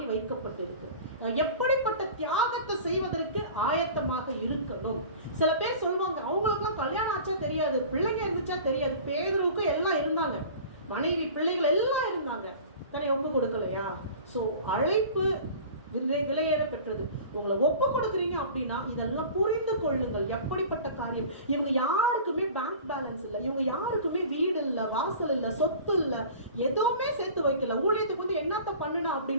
வைக்கப்பட்டிருக்கு, எப்படிப்பட்ட தியாகத்தை செய்வதற்கு ஆயத்தமாக இருக்கணும். சில பேர் சொல்லுவாங்க, அவங்களுக்குலாம் கல்யாணம் ஆச்சா தெரியாது, பிள்ளைங்க இருந்துச்சா தெரியாது. பேதுருவுக்கு எல்லாம் இருந்தாங்க, மனைவி பிள்ளைகள் எல்லாம் இருந்தாங்க, தன்னை ஒப்பு கொடுக்கலையா? ஸோ அழைப்பு விலையேற பெற்றது. உங்களை ஒப்பு கொடுக்குறீங்க அப்படின்னா இதெல்லாம் புரிந்து கொள்ளுங்கள். எப்படிப்பட்ட காரியம். இவங்க யாருக்குமே பேங்க் பேலன்ஸ் இல்லை, இவங்க யாருக்குமே வீடு இல்லை, வாசல் இல்லை, சொத்து இல்லை, எதுவுமே சேர்த்து வைக்கல. ஊழியத்துக்கு வந்து என்னத்த பண்ணுனா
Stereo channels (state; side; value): inverted; both; correlation -0.41